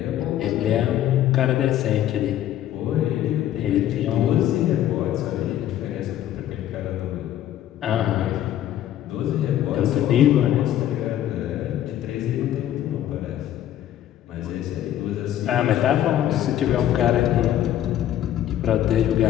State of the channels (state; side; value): quieter; right; 11.9 dB